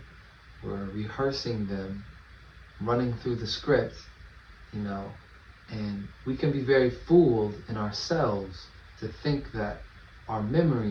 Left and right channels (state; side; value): identical; both; correlation 1.00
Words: we're rehearsing them, running through the script, you know, and we can be very fooled in ourselves to think that our